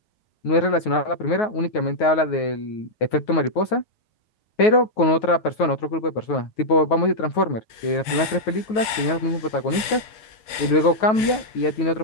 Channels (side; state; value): right; late; 9.4 ms